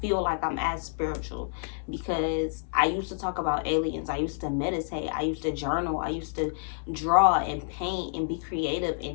feel like I'm as spiritual, because I used to talk about aliens. I used to meditate. I used to journal. I used to draw and paint and be creative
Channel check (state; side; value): silent; right; digital silence